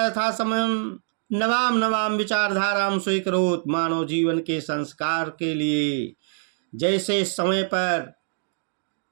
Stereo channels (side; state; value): left; silent; digital silence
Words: यथा समयं नवाम विचारधारां स्वीकरोत्, मानव जीवन के संस्कार के लिए जैसे समय पर